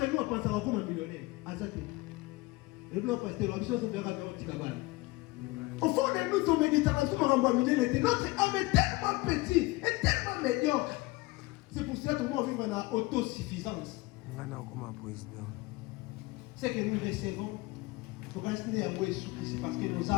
nous a pensé à comme un millionnaire. Le blanc pasteur, la mission se verra vers le Tikabal. Au fond de nous, ton méditation, notre âme est tellement petite et tellement médiocre. C'est pour cela que nous vivons en autosuffisance. C'est que nous recevons, parce que nos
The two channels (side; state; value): right; quieter; 21.7 dB